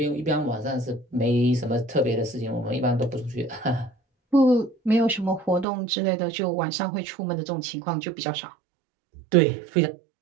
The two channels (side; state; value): left; drops out; at 5.7 s